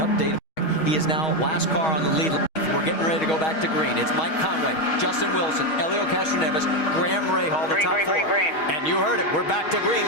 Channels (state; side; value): late; right; 6.3 ms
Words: He is now last car on the lead. We're getting ready to go back to green. It's Mike Conway, Justin Wilson, Elio Castroneves, Graham Rahal, the top 4. Green. And you heard it. We're back to green